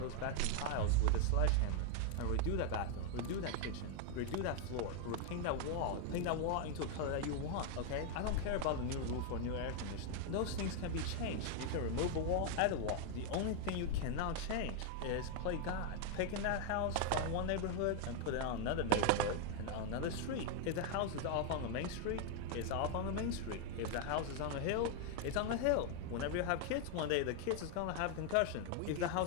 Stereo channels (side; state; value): both; different; correlation 0.01